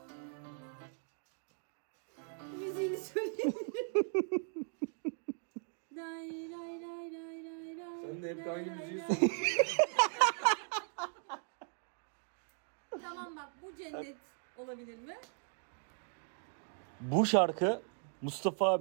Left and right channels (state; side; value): silent; left; 52 dB below the other